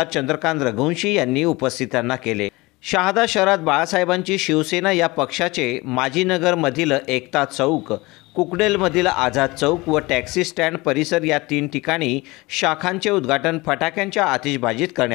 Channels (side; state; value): right; quieter; 22.6 dB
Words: चंद्रकांत रघुवंशी यांनी उपस्थितांना केले। शहादा शहरात बाळासाहेबांची शिवसेना या पक्षाचे माजीनगरमधील एकता चौक, कुकडेलमधील आझाद चौक व टॅक्सी स्टँड परिसर या 3 ठिकाणी शाखांचे उद्घाटन फटाक्यांच्या आतिषबाजीत